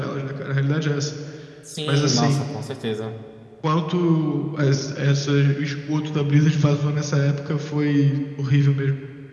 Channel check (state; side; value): identical; both; correlation 1.00